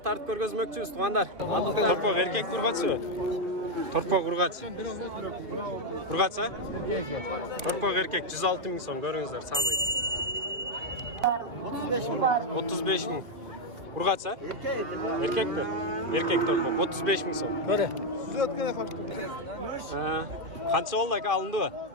görgözmökçüyüz tuğanlar. Torpok erkek kurgaçı. Torpok urgaç. Urgaç ha? Torpok erkek 106 bin son görüңүздөр sanıyı. 35 bin. Urgaç ha? Erkek mi? Erkek torpok 35 bin son. Böyle. Kança oldu aka alındı mı?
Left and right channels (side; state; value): left; late; 2.5 ms